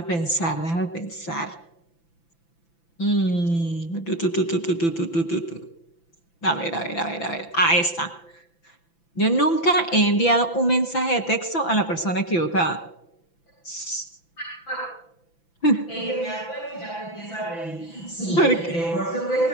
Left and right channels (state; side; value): late; right; 5.9 ms